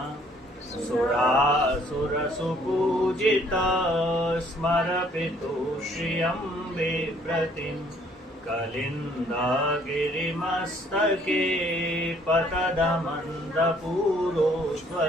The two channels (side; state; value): both; normal; correlation 0.62